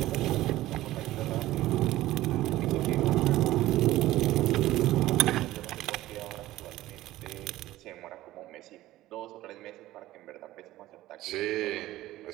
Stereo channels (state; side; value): quieter; left; 16.0 dB